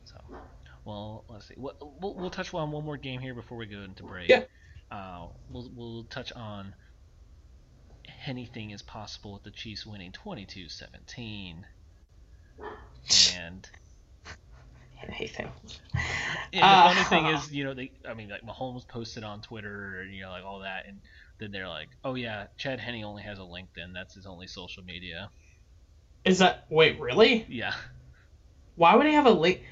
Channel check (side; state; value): both; identical; correlation 1.00